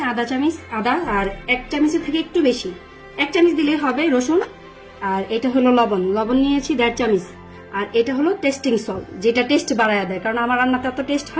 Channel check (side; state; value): both; identical; correlation 1.00